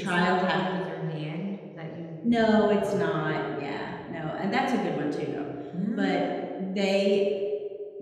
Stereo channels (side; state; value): both; identical; correlation 1.00